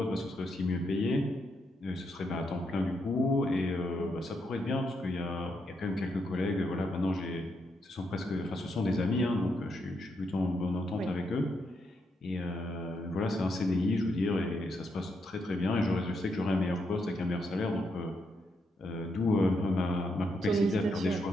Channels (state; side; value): normal; both; correlation 0.80